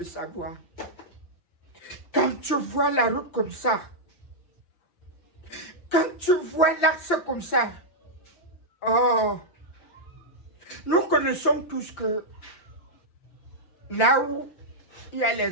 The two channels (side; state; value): right; late; 5.8 ms